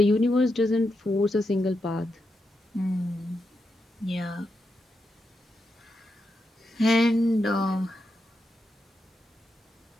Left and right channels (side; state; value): both; normal; correlation 0.85